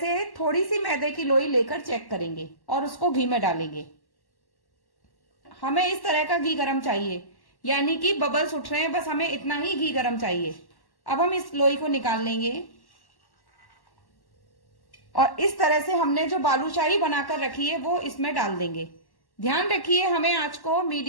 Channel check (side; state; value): right; late; 1.1 ms